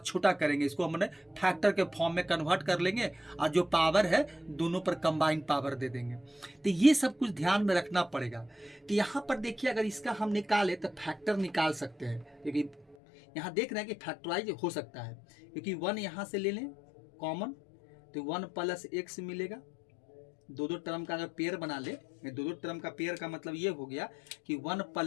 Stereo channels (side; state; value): right; drops out; at 13.0 s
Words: करेंगे, इसको हमने फैक्टर के फॉर्म में कन्वर्ट कर लेंगे और जो पावर है दोनों पर कंबाइन पावर दे देंगे। तो ये सब कुछ ध्यान में रखना पड़ेगा। तो यहाँ पर देखिए अगर इसका हम निकालें तो फैक्टर निकाल सकते हैं, क्योंकि यहाँ देख रहे हैं कि फैक्टराइज हो सकता है, क्योंकि 1 यहाँ से ले लें कॉमन तो 1 + x मिलेगा। 2 टर्म का अगर पेयर बना ले, 2 टर्म का पेयर का मतलब ये हो गया कि 1